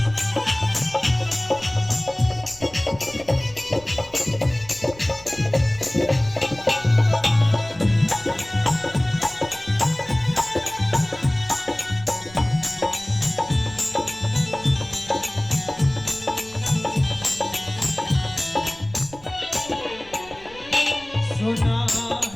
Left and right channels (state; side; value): noise; right; rumble, 21 dB below the sound